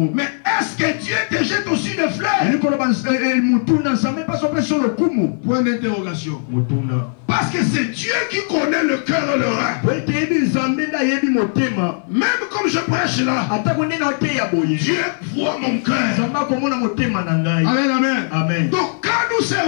Mais est-ce que Dieu te jette aussi des fleurs? Point d'interrogation. Parce que c'est Dieu qui connaît le cœur et le rein. Même comme je prêche là, Dieu voit mon cœur. Amen, amen. Amen. Donc quand nous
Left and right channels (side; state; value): right; silent; 58 dB below the other